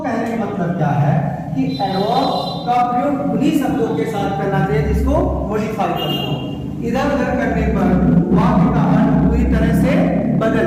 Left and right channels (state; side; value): identical; both; correlation 1.00